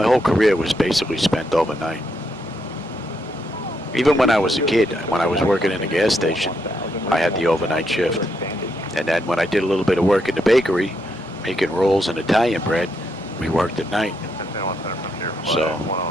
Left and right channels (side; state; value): both; normal; correlation 0.78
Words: whole career was basically spent overnight. Even when I was a kid, when I was working in a gas station, I had the overnight shift. And then when I did a little bit of work in the bakery, making rolls and Italian bread, we worked at night. So